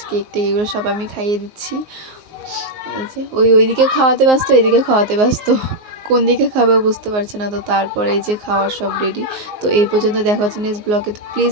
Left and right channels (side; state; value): left; late; 19 ms